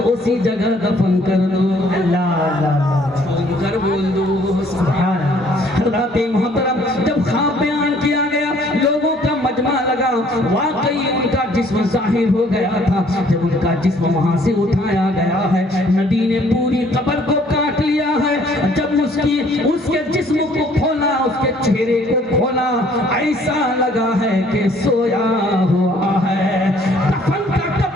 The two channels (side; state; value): both; normal; correlation 0.60